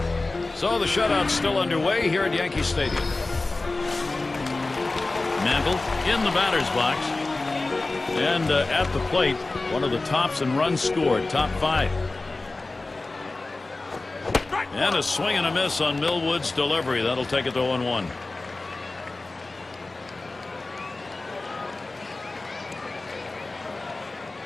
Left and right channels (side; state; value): right; quieter; 3.2 dB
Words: So the shutout's still underway here at Yankee Stadium. Mantle in the batter's box. And at the plate, one of the tops in runs scored, top 5. And a swing and a miss on Millwood's delivery. That'll take it to 0-1.